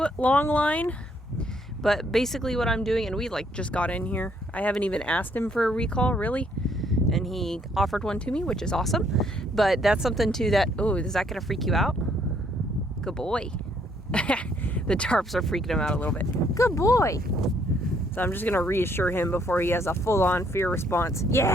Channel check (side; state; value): both; normal; correlation 0.68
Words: long line, but basically what I'm doing, and we just got in here. I haven't even asked him for a recall, really, and he offered one to me, which is awesome. But that's something too that, oh, is that gonna freak you out? Good boy. The tarps are freaking him out a little bit. Good boy. So I'm just gonna reassure him before he has a full-on fear response.